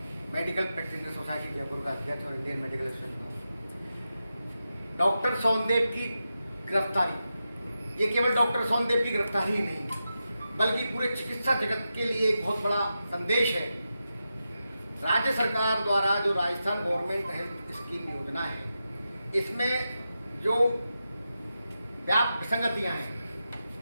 medical practitioner society Jaipur का अध्यक्ष और Indian medical association. Doctor Sondev की गिरफ्तारी, ये केवल डॉक्टर सोनदेव की गिरफ्तारी ही नहीं बल्कि पूरे चिकित्सा जगत के लिए एक बहुत बड़ा संदेश है। राज्य सरकार द्वारा जो राजस्थान गवर्नमेंट हेल्थ स्कीम योजना है, इसमें जो व्यापक विसंगतियां हैं,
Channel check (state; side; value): inverted; both; correlation -0.90